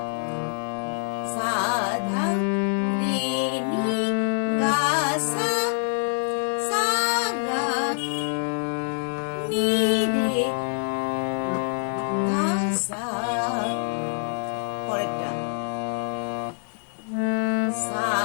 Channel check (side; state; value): right; silent; 61 dB below the other